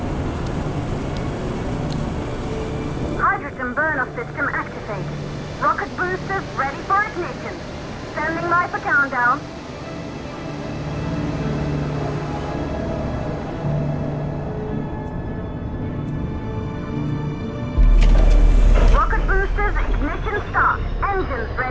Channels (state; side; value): identical; both; correlation 1.00